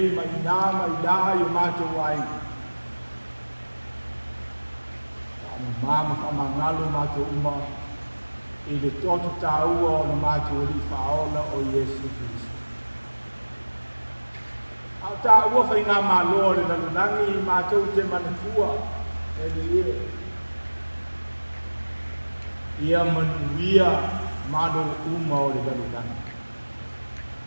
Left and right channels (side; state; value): both; inverted; correlation -1.00